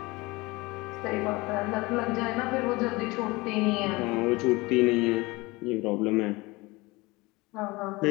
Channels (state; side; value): quieter; right; 22.9 dB